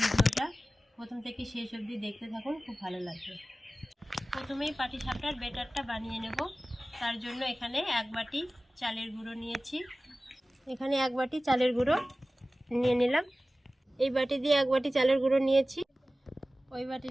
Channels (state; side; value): normal; both; correlation 0.96